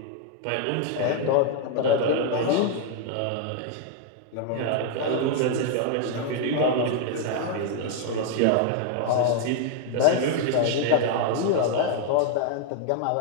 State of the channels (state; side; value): different; both; correlation 0.00